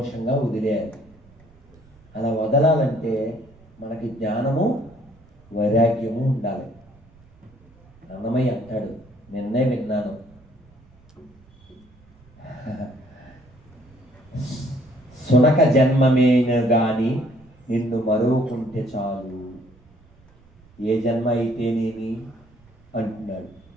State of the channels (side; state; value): right; noise; rumble, 28 dB below the sound